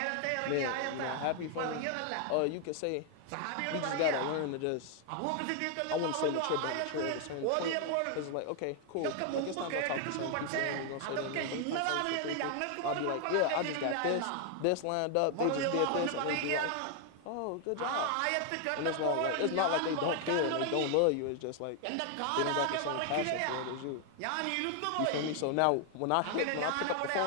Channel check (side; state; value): both; different; correlation 0.00